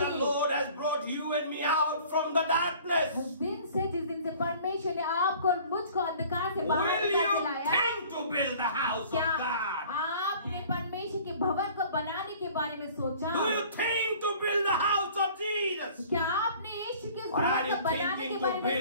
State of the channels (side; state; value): both; inverted; correlation -0.49